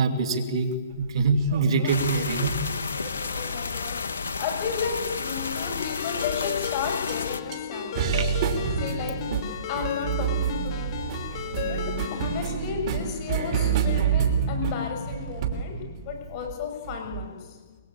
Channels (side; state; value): both; inverted; correlation -0.48